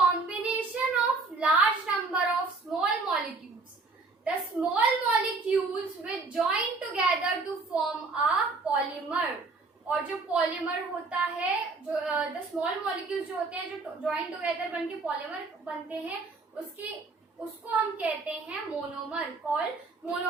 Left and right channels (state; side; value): quieter; left; 3.9 dB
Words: of large number of small molecules. The small molecules which join together to form a polymer. और जो polymer होता है, जो the small molecules जो होते हैं, जो join together बनके पॉलीमर बनते हैं, उसको हम कहते हैं मोनोमर, कॉल्ड